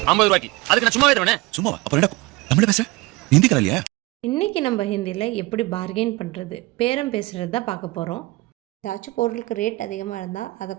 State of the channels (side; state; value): left; quieter; 21.4 dB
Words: 50 ரூபாய்க்கு. அதுக்கு நான் சும்மாவே தருவேனே. சும்மாவா? அப்புறம் என்ன தமிழ பேச? ஹிந்தி கரை இல்லையா? இன்றைக்கி நம்ம ஹிந்தியில் எப்படி பார்கெயின் பண்ணுறது, பேரம் பேசுகிறது தான் பார்க்க போகிறோம். ஏதாச்சும் பொருளுக்கு ரேட் அதிகமாக இருந்தால் அதை